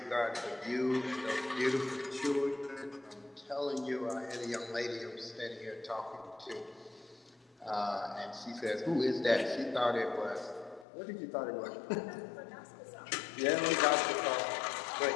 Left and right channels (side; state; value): right; drops out; at 10.9 s